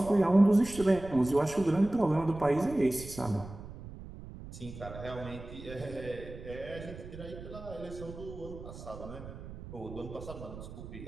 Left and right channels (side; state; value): right; noise; rumble, 13 dB below the sound